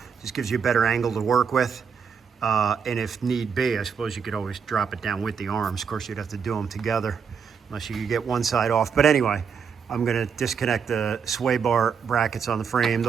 Just gives you a better angle to work with. And if need be, I suppose you could always drop it down with the arms. Of course, you'd have to do them together unless you could get one side off. But anyway, I'm going to disconnect the sway bar brackets on the frame.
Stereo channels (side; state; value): left; quieter; 6.5 dB